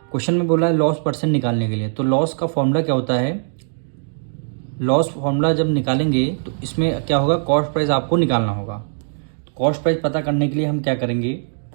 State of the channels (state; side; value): silent; left; digital silence